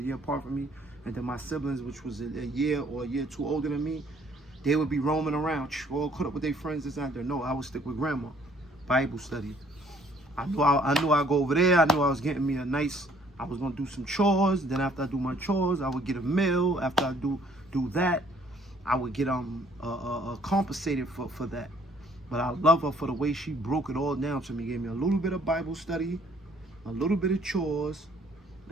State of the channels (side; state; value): both; normal; correlation 0.61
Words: year apart from me, and then my siblings, which was a year or a year too older than me, they would be roaming around, all caught up with their friends this and that. No, I would stick with grandma. Bible study. I knew I'd go over there. I knew I was getting me a nice, I was gonna do some chores. Then after I do my chores, I would get a meal. After I do that, I would get compensated for that. But I love her for the way she broke it all down to me. Gave me a little bit of Bible study, a little bit of chores,